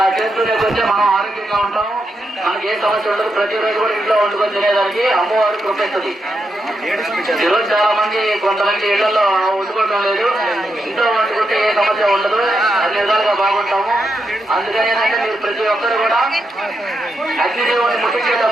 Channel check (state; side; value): normal; both; correlation 0.84